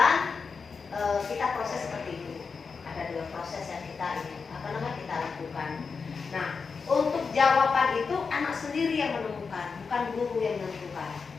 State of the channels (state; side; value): quieter; right; 5.2 dB